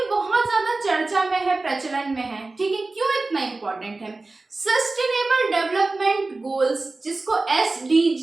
बहुत ज्यादा चर्चा में है, प्रचलन में है, ठीक है। क्यों इतना इंपॉर्टेंट है? सस्टेनेबल डेवलपमेंट गोल्स, जिसको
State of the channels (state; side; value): quieter; left; 3.4 dB